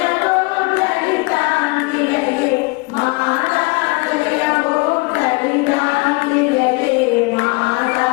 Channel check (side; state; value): right; quieter; 26.6 dB